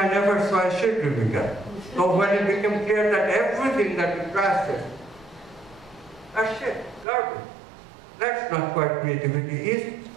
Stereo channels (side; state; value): left; drops out; at 7.1 s